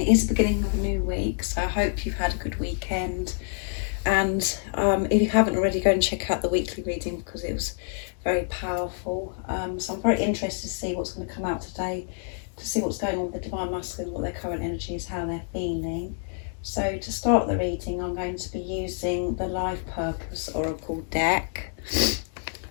is the beginning of a new week, so I hope you've had a good weekend. And if you haven't already, go and check out the weekly reading because it was very powerful. So I'm very interested to see what's going to come out today, to see what's going on with the Divine Masculine, what their current energy is, how they're feeling. So to start the reading, I'm going to be using the Life Purpose Oracle deck.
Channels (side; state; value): right; silent; 60 dB below the other